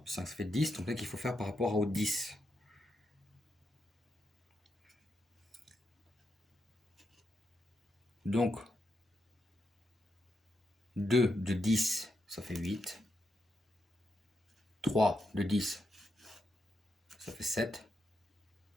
plus 5, ça fait 10. Donc là, qu'il faut faire par rapport au 10. Donc, 2 de 10, ça fait 8. 3 de 10, ça fait 7.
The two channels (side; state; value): both; normal; correlation 0.83